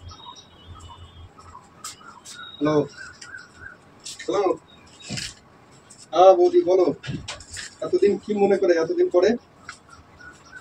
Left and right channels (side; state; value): both; identical; correlation 1.00